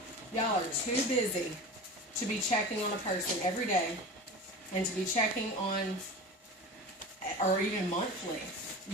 Y'all are too busy to be checking on a person every day and to be checking on, or even monthly.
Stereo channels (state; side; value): normal; both; correlation 0.32